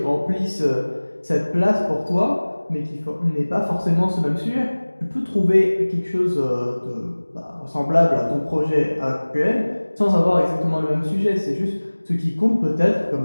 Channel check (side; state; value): both; inverted; correlation -1.00